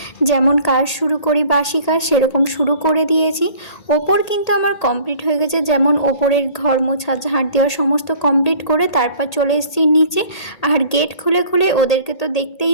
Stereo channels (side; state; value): right; late; 1.8 ms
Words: যেমন কাজ শুরু করি, বাসি কাজ সেরকম শুরু করে দিয়েছি। ওপর কিন্তু আমার কমপ্লিট হয়ে গেছে, যেমন ওপরের ঘর মোছা, ঝাড় দেওয়া সমস্ত কমপ্লিট করে তারপর চলে এসেছি নিচে। আর গেট খুলে খুলে ওদেরকে তো